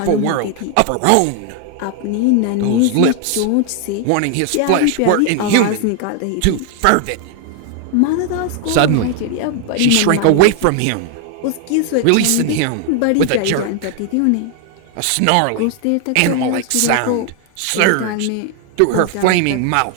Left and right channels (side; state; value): both; different; correlation 0.00